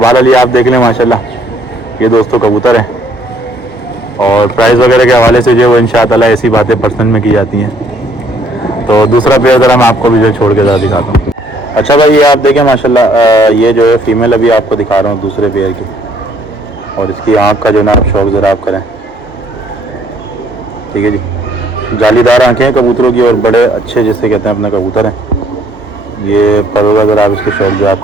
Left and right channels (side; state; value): both; normal; correlation 0.64